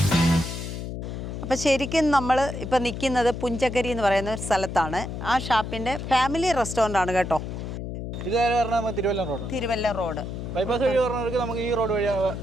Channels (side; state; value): left; noise; hum, 6 dB below the sound